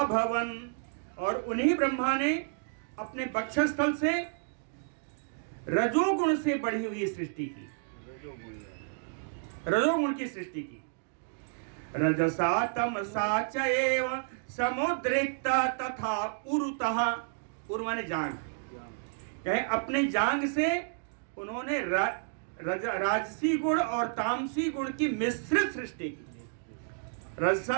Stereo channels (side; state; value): left; silent; digital silence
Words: और उन्हीं ब्रह्मा ने अपने बक्षस्थल से रजोगुण से बढ़ी हुई सृष्टि की, रजोगुण की सृष्टि की। रजसा तमसा चैव समुद्रिक्ता तथा उरुतः, उर माने जांग, कहे अपने जांग से उन्होंने राजसी गुण और तामसी गुण की मिश्रित सृष्टि की।